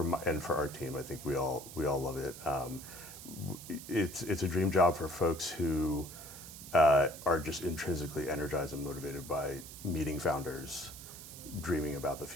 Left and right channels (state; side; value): noise; right; hiss, 13 dB below the sound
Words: our team. I think we all love it. It's a dream job for folks who are just intrinsically energized and motivated by meeting founders, dreaming about the